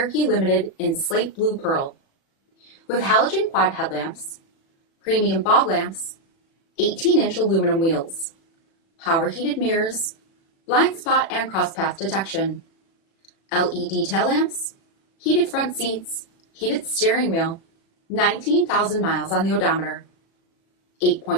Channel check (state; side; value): late; right; 36 ms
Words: Limited in slate blue pearl. With halogen quad headlamps, premium fog lamps, 18-inch aluminum wheels, power heated mirrors, blind spot and crosspath detection, LED tail lamps, heated front seats, heated steering wheel, 19,000 miles on the odometer,